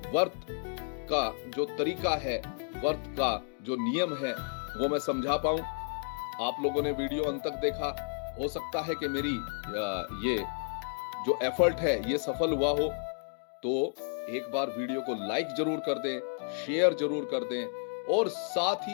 व्रत का जो तरीका है, व्रत का जो नियम है वो मैं समझा पाऊं। आप लोगों ने वीडियो अंत तक देखा, हो सकता है कि मेरी ये जो एफर्ट है ये सफल हुआ हो। तो एक बार वीडियो को लाइक जरूर कर दें, शेयर जरूर कर दें, और साथ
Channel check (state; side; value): silent; right; 57 dB below the other